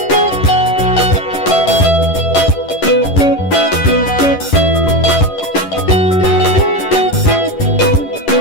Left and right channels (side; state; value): right; late; 11 ms